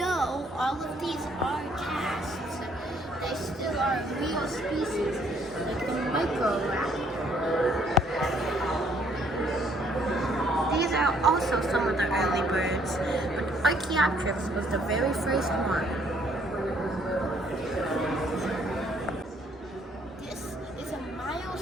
all of these are casts, they still are real species, like the microraptor. These are also some of the early birds, but Archaeopteryx was the very first one. This is a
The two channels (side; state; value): both; normal; correlation 0.65